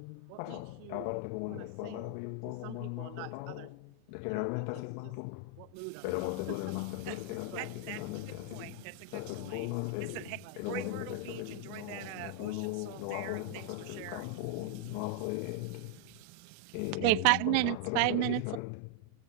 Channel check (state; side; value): different; both; correlation 0.00